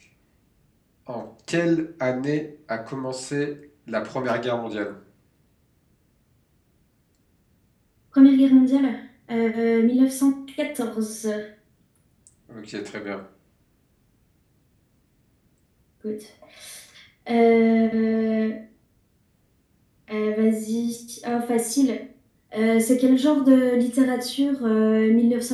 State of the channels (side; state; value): both; identical; correlation 1.00